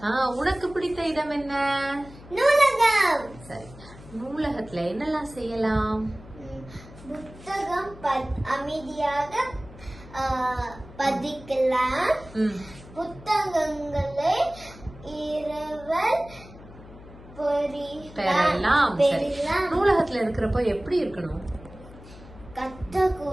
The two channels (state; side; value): noise; left; hum, 19 dB below the sound